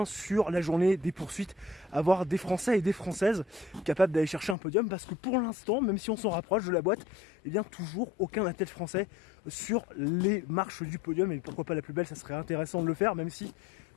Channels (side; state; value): right; drops out; at 4.5 s